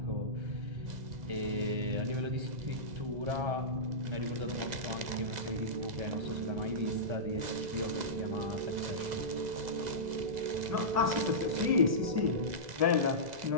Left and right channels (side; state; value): left; late; 2.0 ms